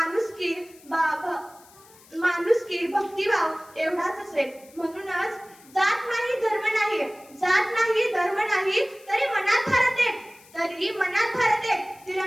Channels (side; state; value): left; noise; hiss, 25 dB below the sound